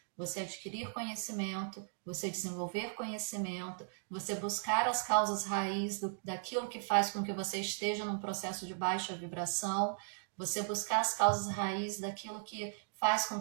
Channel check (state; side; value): silent; left; digital silence